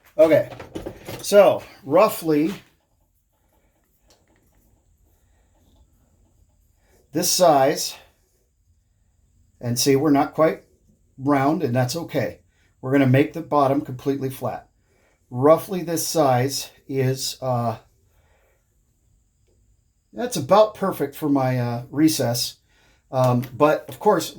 Okay, so roughly this size. And see, we're not quite round, and that's okay. We're going to make the bottom completely flat. Roughly this size is, that's about perfect for my recess. But, of course,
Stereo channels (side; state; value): both; identical; correlation 1.00